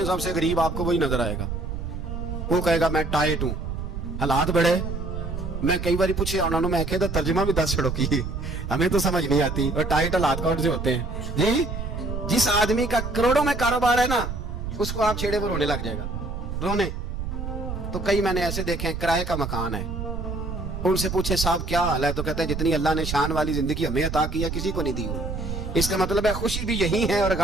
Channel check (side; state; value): right; noise; rumble, 5 dB below the sound